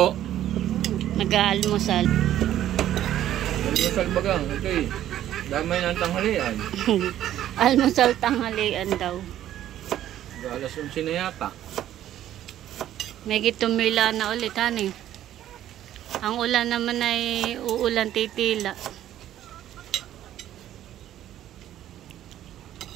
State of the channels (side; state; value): left; quieter; 12.2 dB